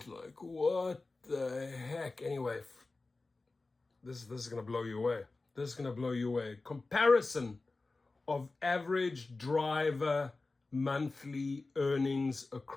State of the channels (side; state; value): right; quieter; 3.5 dB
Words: like, what the heck? Anyway, this is going to blow you away. This is going to blow you away. Comparison of average driver monthly earnings